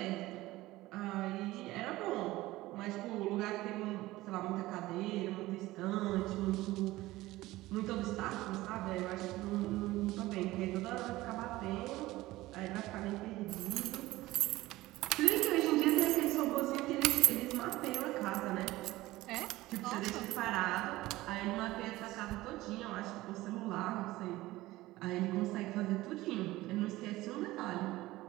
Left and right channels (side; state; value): left; quieter; 18.0 dB